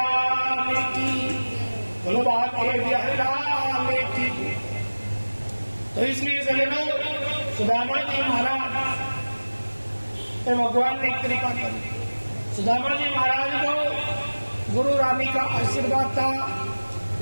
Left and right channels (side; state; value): both; inverted; correlation -1.00